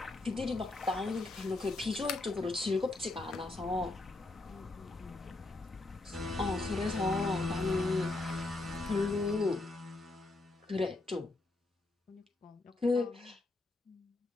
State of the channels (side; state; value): right; quieter; 3.0 dB